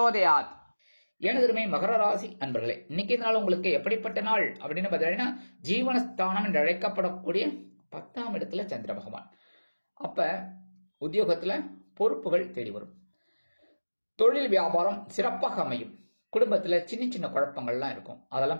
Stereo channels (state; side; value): inverted; both; correlation -1.00